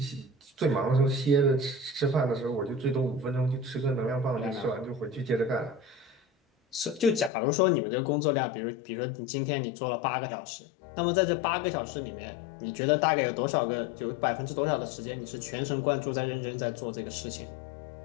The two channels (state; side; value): drops out; right; at 7.3 s